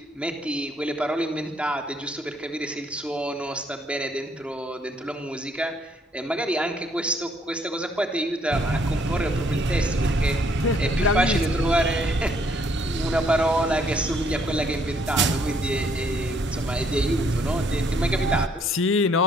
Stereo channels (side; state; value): both; normal; correlation 0.67